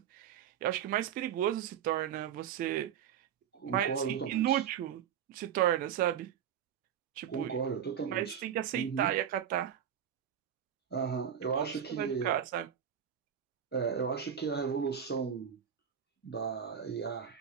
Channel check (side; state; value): left; quieter; 8.8 dB